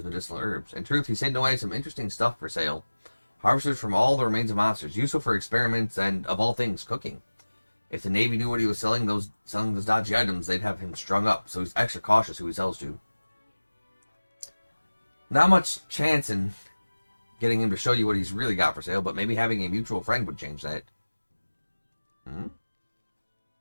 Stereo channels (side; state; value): both; inverted; correlation -1.00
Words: medicinal herbs. In truth, he's hidden away some interesting stuff for sale. Harvested from all the remains of monsters, useful for experiments, and, of all things, cooking. If the Navy knew what he was selling those dodgy items, they'd have him strung up, so he's extra cautious who he sells to. Not much chance in getting him to show you what he's really got for sale, but maybe having a mutual friend would change that.